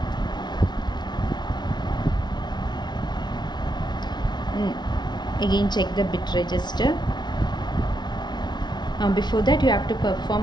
again check the bit register. Before that you have to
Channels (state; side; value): late; right; 0.20 ms